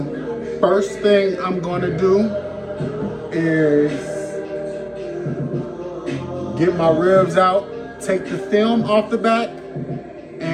first thing I'm gonna do is get my ribs out, take the film off the back,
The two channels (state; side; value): identical; both; correlation 1.00